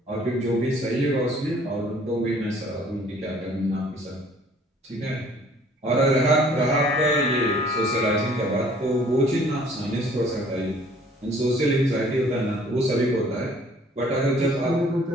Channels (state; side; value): normal; both; correlation 0.56